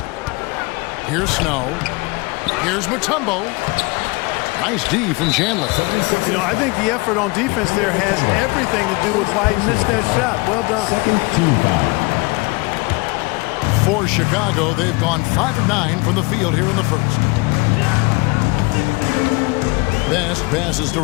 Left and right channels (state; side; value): quieter; right; 26.6 dB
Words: Here's Snow. Here's Mutombo. Nice D from Chandler. You know, I think the effort on defense there has everything to do with why he missed that shot. Well done. For Chicago, they've gone 5 of 9 from the field here in the first. Best passes to